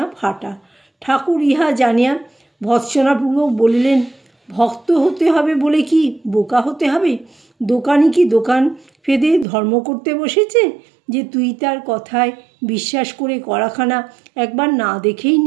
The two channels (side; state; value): left; drops out; at 9.5 s